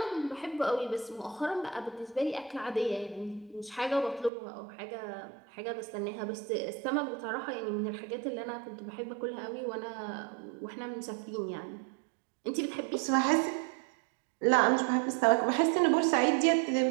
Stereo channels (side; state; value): left; drops out; at 4.3 s